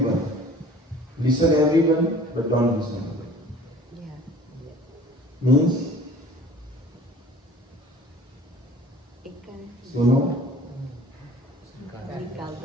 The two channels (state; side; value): normal; both; correlation 0.47